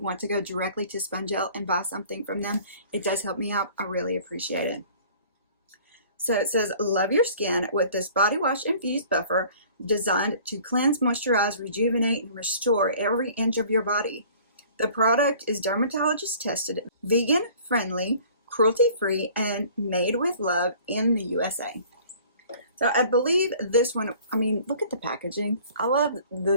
to go directly to Spongelle and buy something from them, it does help me out. I really appreciate it. So it says, love your skin with this body wash infused buffer designed to cleanse, moisturize, rejuvenate, and restore every inch of your body. The product is dermatologist tested, vegan friendly, cruelty-free, and made with love in the USA. So I believe this one, I mean, look at the packaging. I love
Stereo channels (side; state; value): both; inverted; correlation -0.50